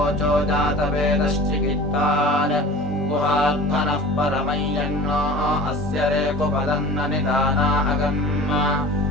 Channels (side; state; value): both; normal; correlation 0.40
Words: जातवेदश्चिकित्तान् गुहात्मनः परमं यन्नो अस्य रेकुपदन्न निदाना अगम्म